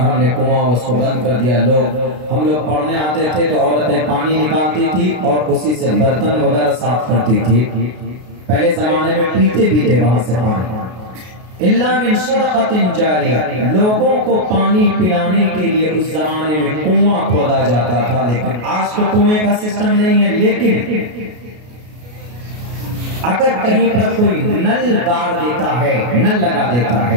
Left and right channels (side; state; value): left; late; 33 ms